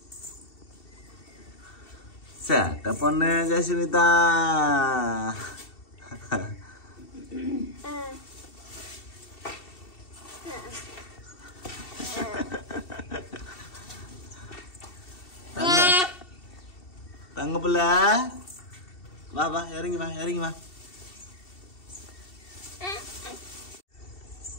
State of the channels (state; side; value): late; right; 2.7 ms